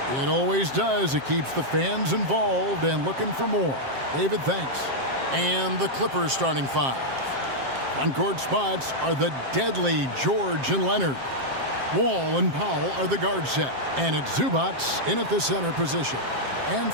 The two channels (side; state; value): left; late; 7.5 ms